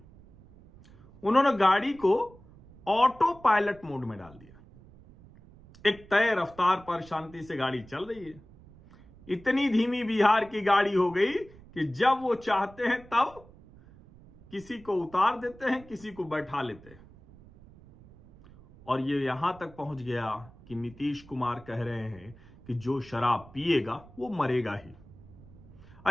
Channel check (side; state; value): right; noise; rumble, 22 dB below the sound